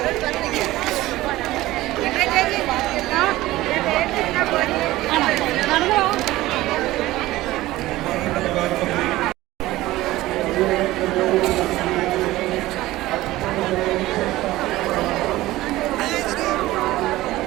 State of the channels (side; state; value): left; quieter; 17.2 dB